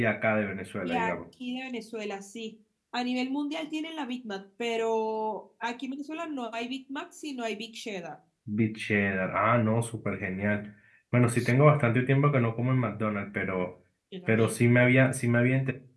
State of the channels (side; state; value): both; identical; correlation 1.00